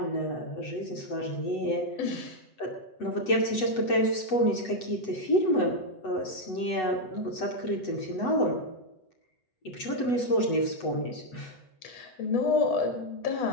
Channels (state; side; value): late; right; 8.0 ms